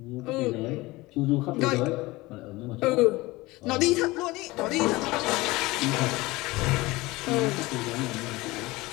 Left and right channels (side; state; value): right; quieter; 20.8 dB